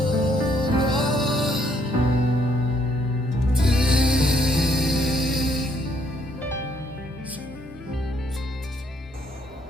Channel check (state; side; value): normal; both; correlation 0.69